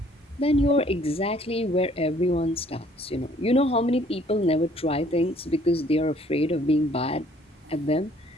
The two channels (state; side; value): normal; both; correlation 0.60